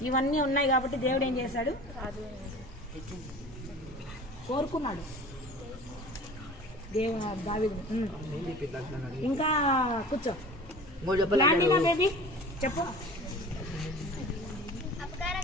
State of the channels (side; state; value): both; normal; correlation 0.40